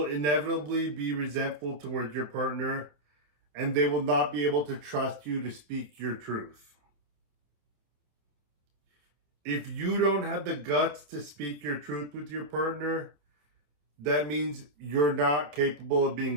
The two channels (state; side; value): late; left; 27 ms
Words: inevitably be resentful towards your partner, and they will not be able to trust you to speak your truth. If you don't have the guts to speak your truth with your partner, that means you're not capable of